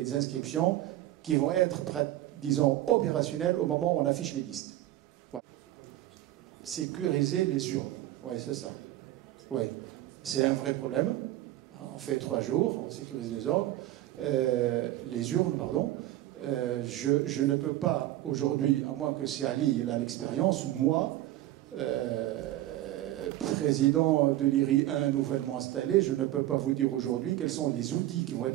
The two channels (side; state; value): left; quieter; 14.7 dB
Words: inscriptions qui vont être, disons, opérationnelles au moment où on affiche les listes. Sécuriser les urnes. Oui, c'est ça. Oui, c'est un vrai problème. On fait 3 jours, on sécurise les urnes, pardon. Je ne peux pas aujourd'hui, à moins que c'est Ali, il a l'expérience, moi, président de l'IRI 1 nouvellement installé, je ne peux pas vous dire aujourd'hui quels sont les outils qui vont être